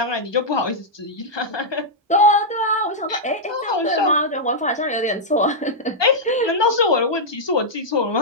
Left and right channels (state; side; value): normal; both; correlation -0.07